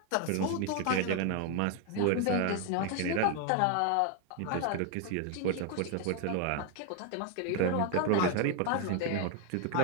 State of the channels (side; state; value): both; different; correlation 0.00